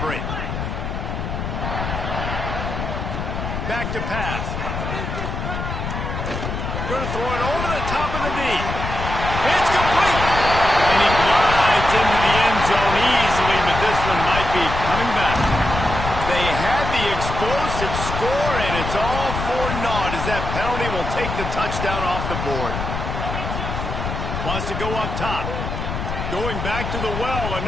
break. Back to pass. Going to throw it over the top of the D. It's complete. And he glides into the end zone easily, but this one might be coming back. They had the explosive score, and it's all for naught as that penalty will take the touchdown off the board. Wants to go up top. Going back to the well,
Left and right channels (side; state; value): left; noise; rumble, 4 dB below the sound